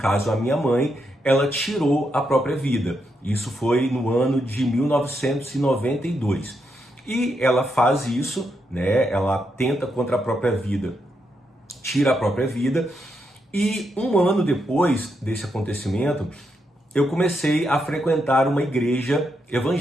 a minha mãe, ela tirou a própria vida. Isso foi no ano de 1992. E ela faz isso, né? Ela tenta contra a própria vida, tira a própria vida. E um ano depois desse acontecimento, eu comecei a frequentar uma igreja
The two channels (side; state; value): both; normal; correlation 0.81